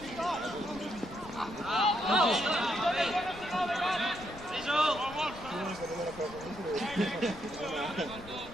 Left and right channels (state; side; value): noise; left; rumble, 18 dB below the sound